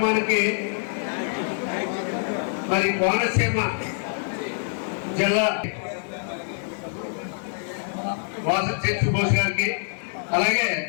మరి కోనసీమ జిల్లా వాసంతి సుభాష్ గారికి, అలాగే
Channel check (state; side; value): silent; right; digital silence